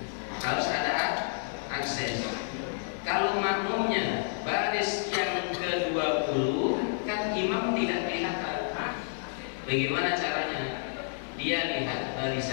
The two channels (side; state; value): right; silent; digital silence